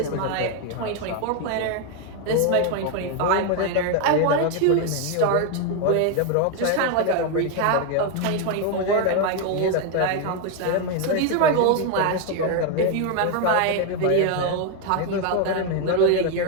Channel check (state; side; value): different; both; correlation 0.01